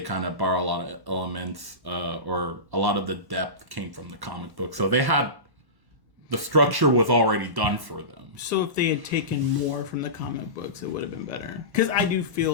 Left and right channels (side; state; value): left; late; 1.1 ms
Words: of borrow a lot of elements, or a lot of the depth came from the comic book, so they had. The structure was already done for them. So if they had taken more from the comic books, it would have been better. Because I do